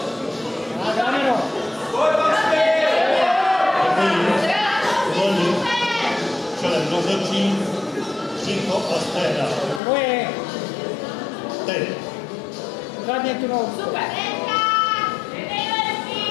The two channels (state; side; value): drops out; right; at 9.8 s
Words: A dáme no. Děkuji. Volí. Čelem rozhodčí. Příko a stehna. Tvoje. Teď. Zadně tu nohu.